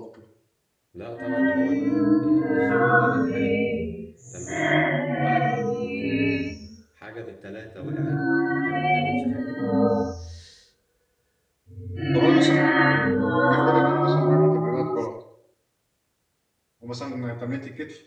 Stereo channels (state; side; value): identical; both; correlation 1.00